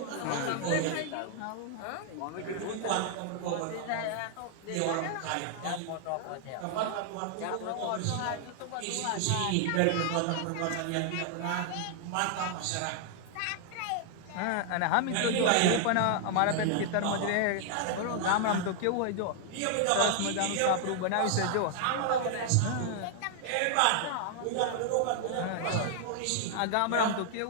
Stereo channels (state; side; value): different; both; correlation 0.00